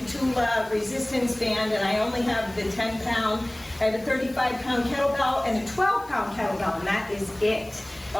resistance band, and I only have the 10-pound. I have a 35-pound kettlebell and a 12-pound kettlebell, and that is it.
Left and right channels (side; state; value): left; noise; hiss, 24 dB below the sound